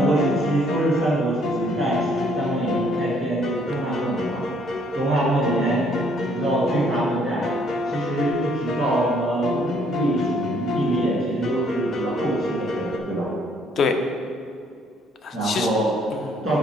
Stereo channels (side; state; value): both; normal; correlation 0.65